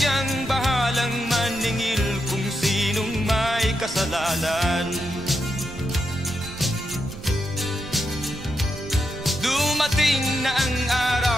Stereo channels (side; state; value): right; noise; rumble, 14 dB below the sound